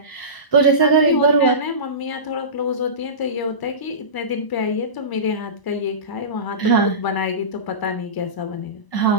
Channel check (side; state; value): right; late; 1.0 ms